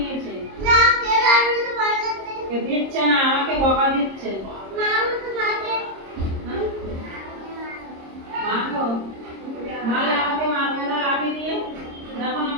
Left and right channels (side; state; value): left; late; 26 ms